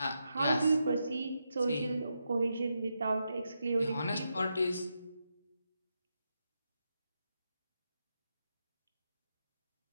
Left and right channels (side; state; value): both; inverted; correlation -0.85